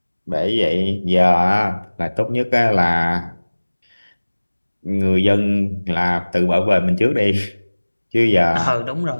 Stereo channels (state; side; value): inverted; both; correlation -1.00